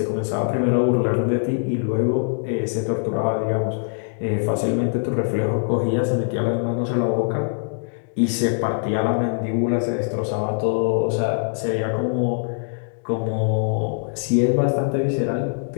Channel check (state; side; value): silent; right; digital silence